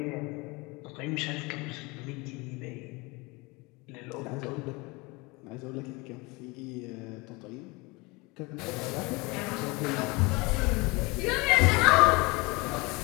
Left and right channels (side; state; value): right; quieter; 25.6 dB